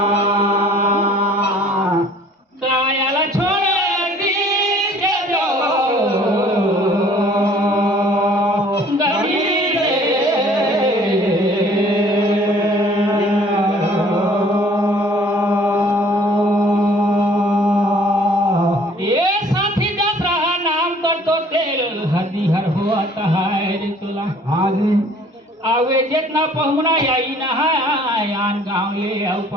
कायाला छोड़ दी जो गरी रे ये साथी दसरा नाम कर तो तेल हदी हर हुआ है रे चोला हाँ जी आवे जितना पहुना आई ना आन गाँव ले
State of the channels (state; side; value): normal; both; correlation 0.54